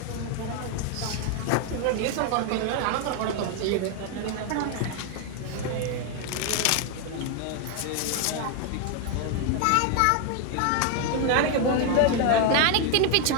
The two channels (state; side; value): different; both; correlation 0.01